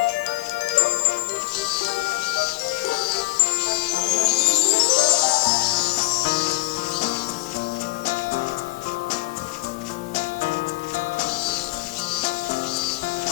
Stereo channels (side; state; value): right; quieter; 22.7 dB